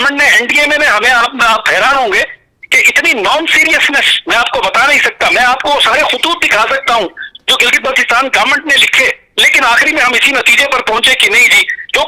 نے این ڈی اے میں ہمیں, آپ حیران ہوں گے کہ اتنی نان سیریسنس میں آپ کو بتا نہیں سکتا. میں آپ کو سارے خطوط دکھا سکتا ہوں جو گلگت بلتستان گورنمنٹ نے لکھے, لیکن آخری میں ہم اسی نتیجے پر پہنچے کہ نہیں جی جو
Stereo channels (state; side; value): identical; both; correlation 1.00